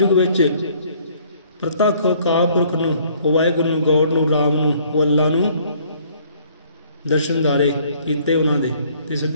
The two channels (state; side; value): inverted; both; correlation -0.60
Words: विच प्रतख अकाल पुरख नूं, वाहिगुरू नूं, गौड़ नूं, राम नूं, वो अल्लाह नूं दर्शन दारे कीते उन्हां दे, ते